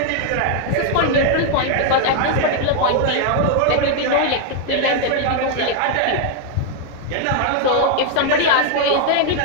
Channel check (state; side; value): different; both; correlation 0.00